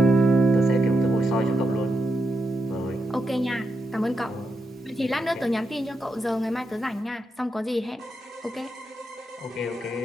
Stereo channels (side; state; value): both; normal; correlation 0.84